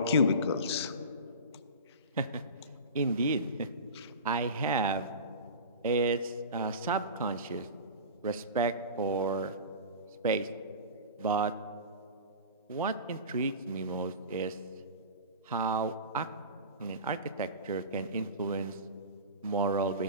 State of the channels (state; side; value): inverted; both; correlation -0.32